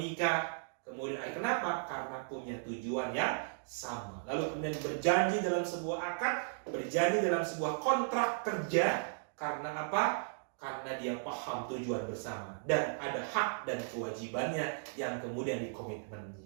kemudian kenapa? Karena punya tujuan yang sama. Lalu kemudian berjanji dalam sebuah akad, berjanji dalam sebuah kontrak kerja. Karena apa? Karena dia paham tujuan bersama dan ada hak dan kewajibannya yang kemudian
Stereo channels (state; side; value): silent; left; digital silence